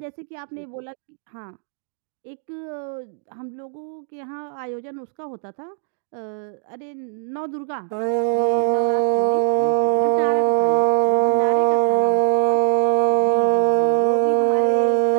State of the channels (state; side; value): silent; left; digital silence